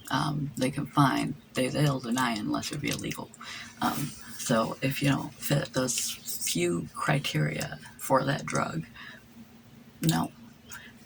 they can find, they'll deny it unless it be illegal. So if you don't fit those few criteria for that drug, no.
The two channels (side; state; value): both; identical; correlation 1.00